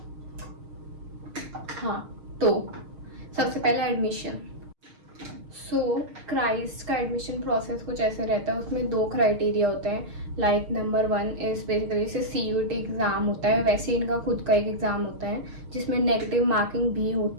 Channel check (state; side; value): late; left; 6.5 ms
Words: हाँ, तो सबसे पहले एडमिशन। क्राइस्ट का एडमिशन प्रोसेस कुछ ऐसे रहता है। उसमें 2 क्राइटेरिया होते हैं। लाइक नंबर 1 इज़ बेसिकली से CUT एग्ज़ाम होता है, वैसे इनका खुद का एक एग्ज़ाम होता है जिसमें नेगेटिव मार्किंग भी